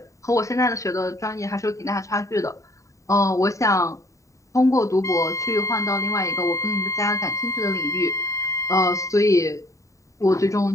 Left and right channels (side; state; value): right; late; 0.16 ms